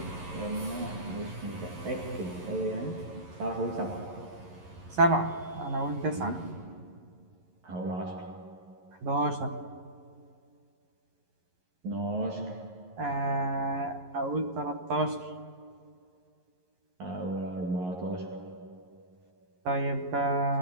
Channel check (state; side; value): late; left; 11 ms